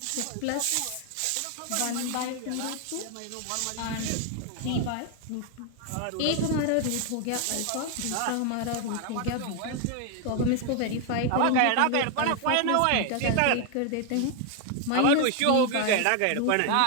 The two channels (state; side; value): different; both; correlation 0.01